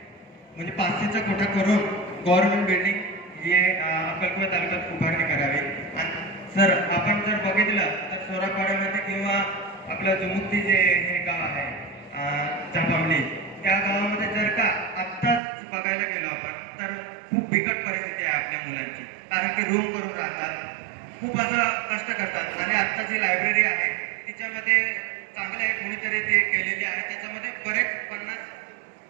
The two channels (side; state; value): left; drops out; at 15.4 s